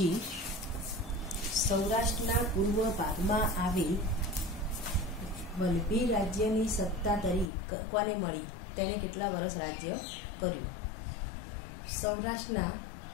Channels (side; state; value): right; drops out; at 7.5 s